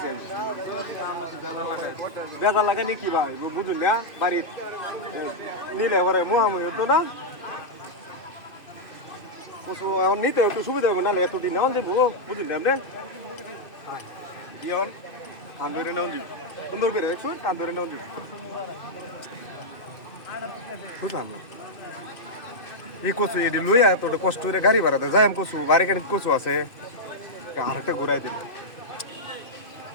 বেদা লাগানি কি ভাই বুঝুন না বাড়ির নিলে এবারে মোহামুহি হতো না কচু এখন নিতে একটু সুবিধা হবে নাহলে এতদিন নেওয়া যাবো বুঝুন না আপনি দিয়ন কান ধরে নেওয়া দিব সুন্দর করে দেখুন কান ধরে নেওয়া দিব বুঝলাম না এই কচু এটি লইয়া তোর কষ্ট করে গাড়ি ভাড়াতে যাই আমি কচু বাড়ি গাড়ি কচু আছে আরেকটা ঘুরাই দিল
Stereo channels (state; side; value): late; right; 2.5 ms